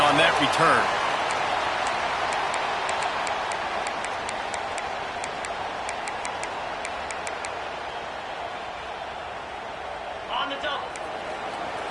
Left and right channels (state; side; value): identical; both; correlation 1.00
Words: that return. On the double.